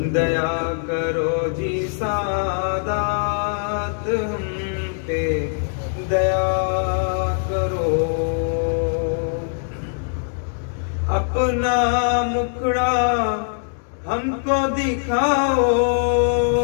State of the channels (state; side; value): silent; right; digital silence